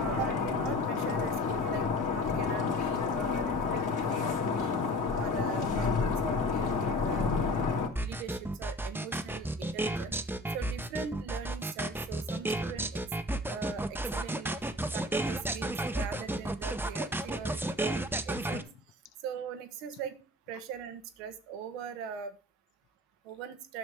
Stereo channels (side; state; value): both; normal; correlation 0.40